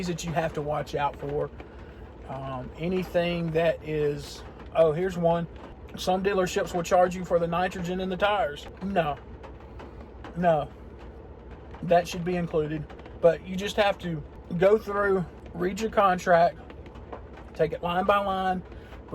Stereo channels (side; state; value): both; identical; correlation 1.00